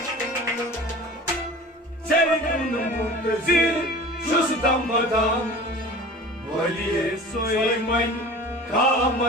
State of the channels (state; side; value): normal; both; correlation 0.39